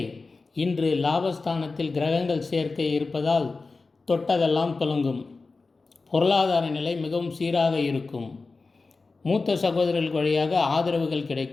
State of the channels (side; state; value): right; quieter; 3.9 dB